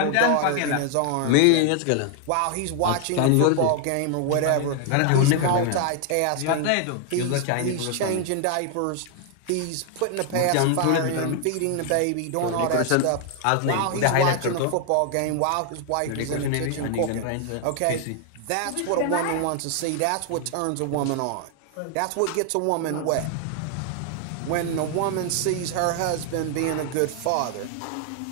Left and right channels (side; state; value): both; different; correlation 0.00